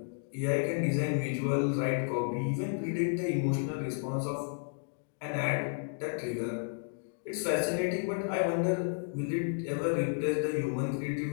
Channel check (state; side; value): silent; right; digital silence